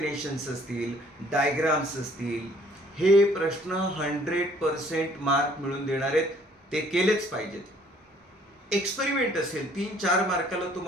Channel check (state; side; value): normal; both; correlation 0.59